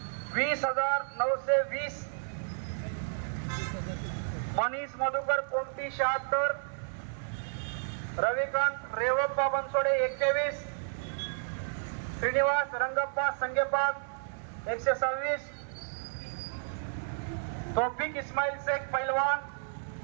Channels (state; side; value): silent; left; 56 dB below the other